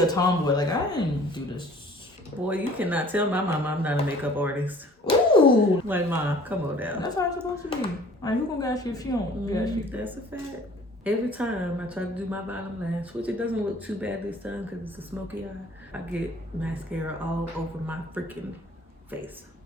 tomboy. Like, I didn't do this. Boy, you cannot tell my mom I'm not a makeup artist. Ooh. Like, Mom, come on down. That's how it's supposed to be. Like, who gonna gas you if she don't gas you? That's a fact. Every time I try to do my bottom lash, which it doesn't look too bad this time because it's a smoky eye, I get mascara all over my freaking face.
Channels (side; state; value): both; normal; correlation 0.52